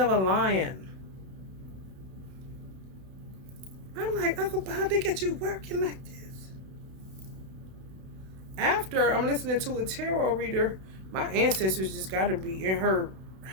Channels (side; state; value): left; late; 32 ms